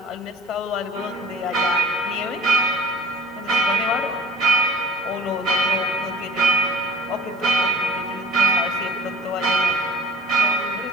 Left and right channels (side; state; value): both; normal; correlation 0.46